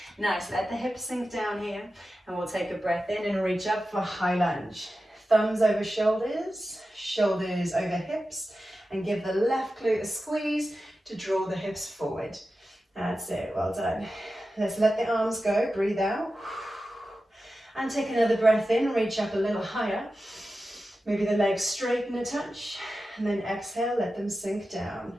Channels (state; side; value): normal; both; correlation 0.93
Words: nice. Let the hips sink down here, and we'll take a breath in and reach up for high lunge. Thumbs over shoulders, shoulders over hips, and give the left glute a squeeze to draw the hips forward. That's it, well done. Let's let the arms go, breathe out. And take another breath in, reach up a little higher. Maybe the legs straighten a touch, and then exhale, let them sink down.